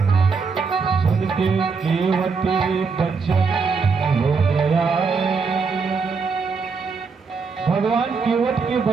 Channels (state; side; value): quieter; left; 5.0 dB